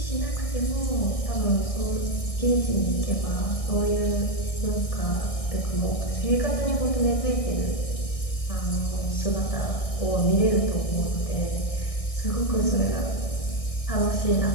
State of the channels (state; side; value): late; right; 1.6 ms